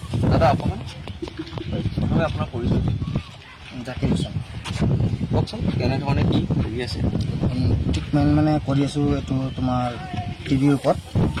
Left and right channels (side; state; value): both; identical; correlation 1.00